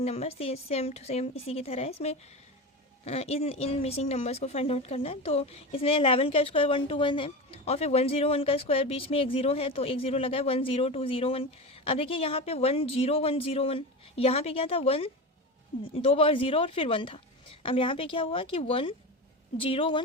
number. Same to same इसी की तरह है, इसमें इन मिसिंग नंबर्स को फाइंड आउट करना है। तो इसमें 11 का स्क्वायर 121 है, और फिर 101 का स्क्वायर बीच में एक 0 है तो एक 0 लगा है 10201। अब देखिए यहाँ पे 10101, यहाँ पे क्या था 1 2 बार 0 और फिर 1 था। अब यहाँ पे क्या हुआ कि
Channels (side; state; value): both; normal; correlation 0.24